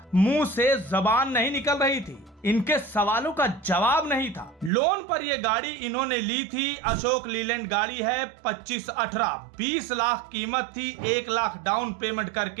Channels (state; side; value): drops out; left; at 4.7 s